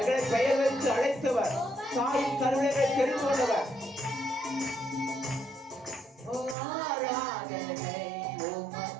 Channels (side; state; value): left; drops out; at 6.6 s